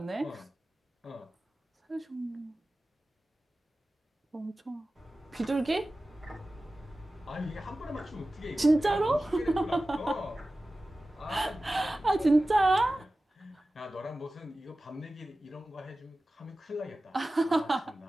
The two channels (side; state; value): both; normal; correlation 0.96